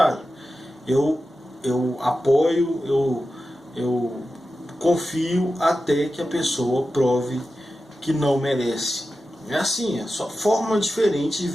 Eu apoio, eu confio até que a pessoa prove que não merece. É assim, é só forma diferente de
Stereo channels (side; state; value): both; normal; correlation 0.92